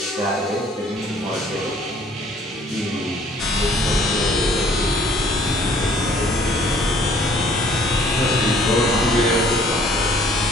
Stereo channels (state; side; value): normal; both; correlation 0.57